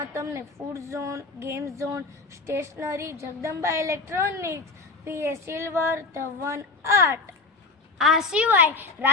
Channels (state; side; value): quieter; right; 3.7 dB